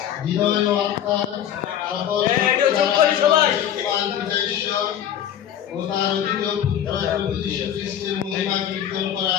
হৃদয় ও আত্মার ও তার অধিক পুত্র প্রভু যীশু খ্রিস্টের মহিমা কীর্তন করা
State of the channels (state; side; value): quieter; right; 10.1 dB